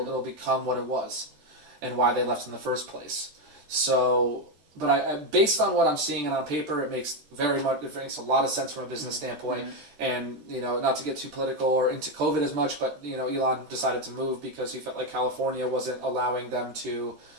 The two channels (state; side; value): late; left; 14 ms